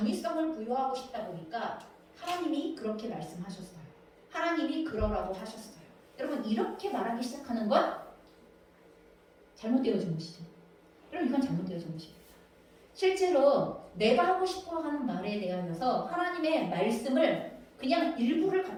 부여하고 싶다 보니까 하나님이 그렇게 말씀하셨어요. 하나님이 그러라고 하셨어요. 여러분, 이렇게 말하기 시작하는 건 잘못되어진 것이죠. 여러분, 이건 잘못되어진 것입니다. 실제로 내가 하고 싶어 하는 말에 대하여서 하나님의 말씀을 그냥 일부를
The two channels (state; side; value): identical; both; correlation 1.00